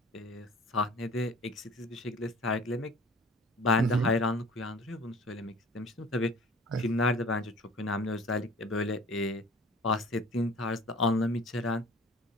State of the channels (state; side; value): normal; both; correlation 0.46